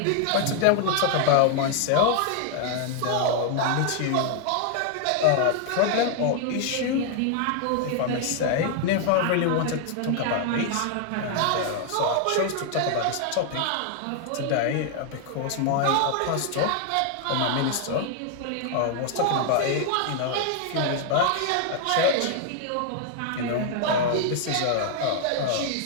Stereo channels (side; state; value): both; different; correlation 0.00